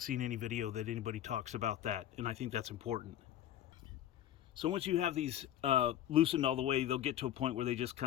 seen any video that anybody talks about that, and I think that's important. So once you have these loosened all the way, they'll get to a point where they just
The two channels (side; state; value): right; quieter; 11.7 dB